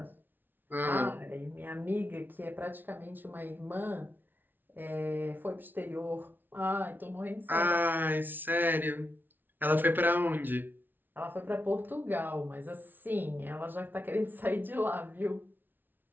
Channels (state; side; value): late; left; 0.091 ms